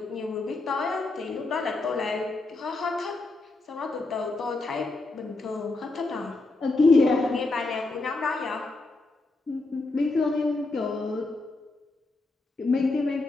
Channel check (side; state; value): right; quieter; 3.3 dB